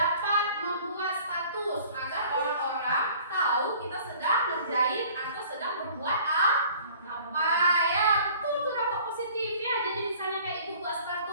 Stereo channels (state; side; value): inverted; both; correlation -0.51